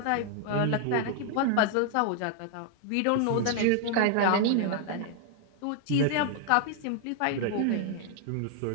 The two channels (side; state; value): both; different; correlation 0.00